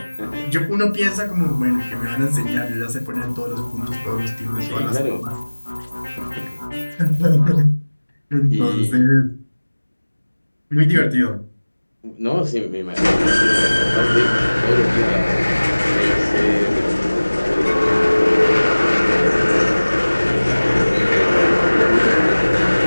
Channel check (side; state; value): both; inverted; correlation -1.00